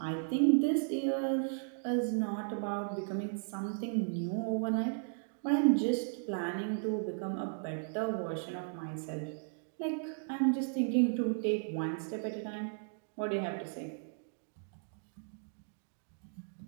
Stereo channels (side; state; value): left; silent; digital silence